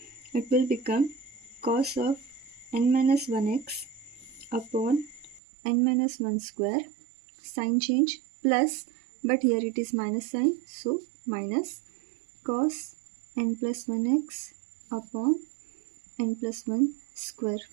It will become cos of n minus 1x upon n minus 1 square, sign change plus, but here it is minus sign, so minus cos n plus 1x upon n plus 1 square.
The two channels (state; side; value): drops out; left; at 5.4 s